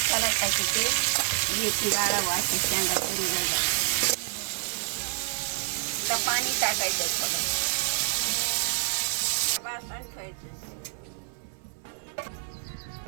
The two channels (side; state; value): left; silent; 59 dB below the other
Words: टाकायचे. मेथी गाळावं असे शेंगा करून जायला. आता पाणी टाकायचं थोडं, बासन ठेवायचं.